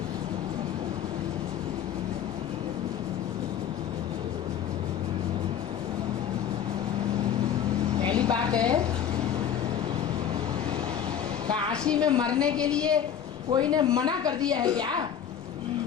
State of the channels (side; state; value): right; quieter; 9.1 dB